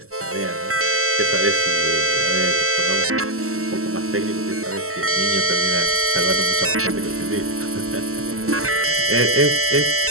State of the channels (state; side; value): late; left; 0.63 ms